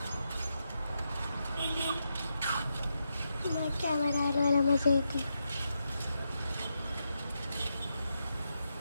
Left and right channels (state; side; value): inverted; both; correlation -0.84